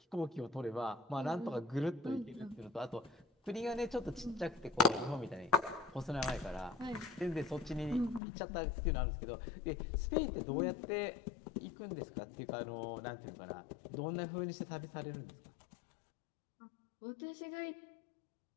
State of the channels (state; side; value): drops out; right; at 8.2 s